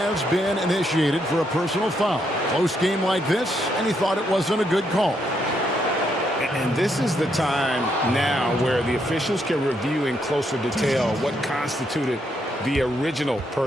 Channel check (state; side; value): normal; both; correlation 0.76